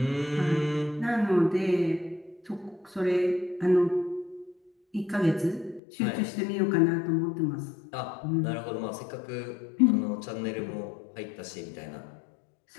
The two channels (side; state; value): right; drops out; at 5.8 s